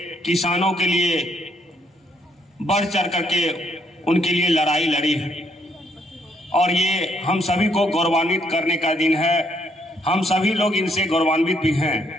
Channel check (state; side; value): normal; both; correlation 0.71